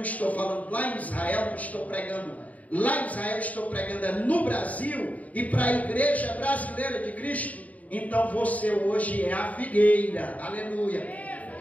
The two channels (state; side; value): late; right; 0.071 ms